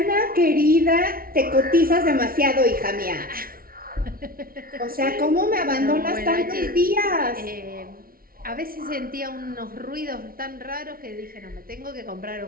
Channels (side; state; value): left; late; 0.43 ms